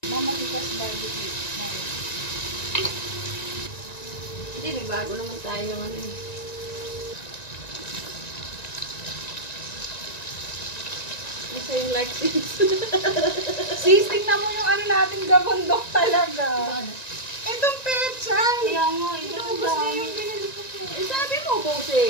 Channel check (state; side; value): late; right; 1.9 ms